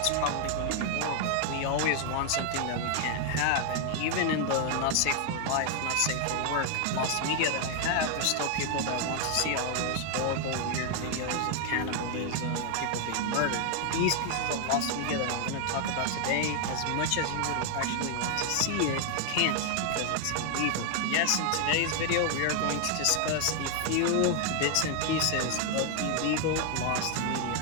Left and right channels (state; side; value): different; both; correlation 0.00